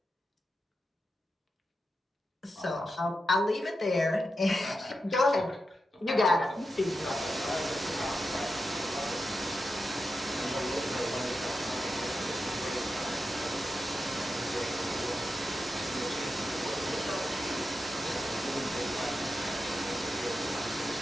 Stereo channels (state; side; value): normal; both; correlation 0.89